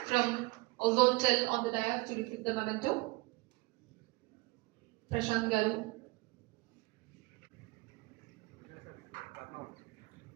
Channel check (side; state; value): left; quieter; 24.3 dB